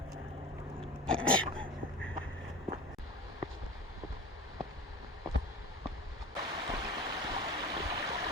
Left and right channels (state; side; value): normal; both; correlation 0.34